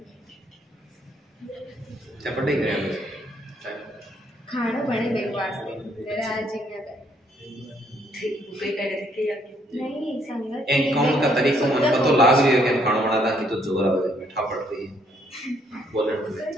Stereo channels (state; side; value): normal; both; correlation 0.68